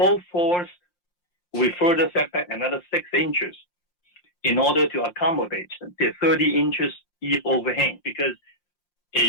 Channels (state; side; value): late; right; 5.7 ms